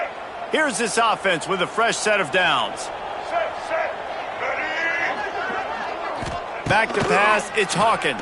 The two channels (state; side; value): identical; both; correlation 1.00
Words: Here's this offense with a fresh set of downs. Back to pass, it's Hawkins.